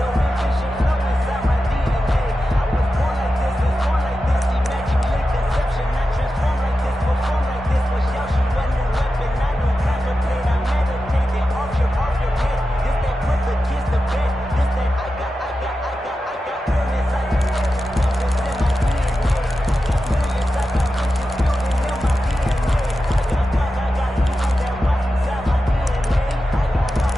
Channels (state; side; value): normal; both; correlation 0.92